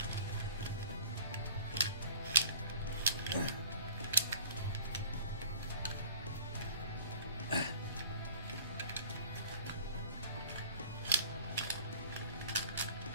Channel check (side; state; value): both; inverted; correlation -0.47